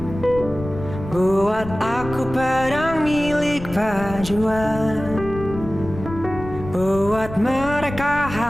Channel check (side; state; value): left; noise; rumble, 11 dB below the sound